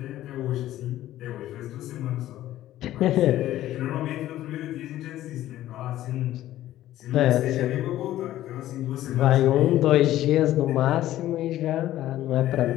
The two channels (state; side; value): quieter; right; 13.9 dB